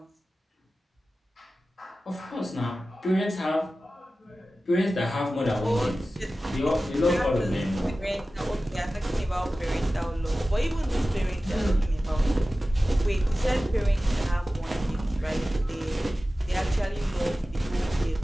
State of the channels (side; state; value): both; normal; correlation 0.95